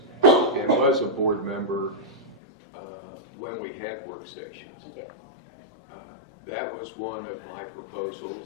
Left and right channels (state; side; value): drops out; right; at 2.4 s